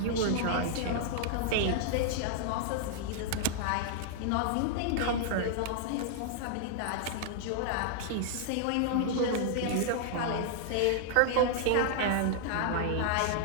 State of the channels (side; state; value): both; different; correlation -0.01